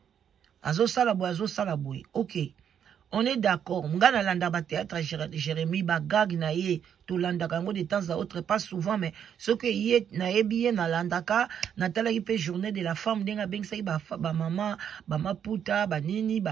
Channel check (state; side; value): quieter; left; 8.6 dB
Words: Azo sala boy. Ok. On est d'accord. M'gana landa ba théâtre Jérémie ba gag na ye to landa kango de temps à autre pas souvent mais ce que yé na yebi na landaka na tala ki pe journée de la femme denga beng sai ba maman ba maputa ba nini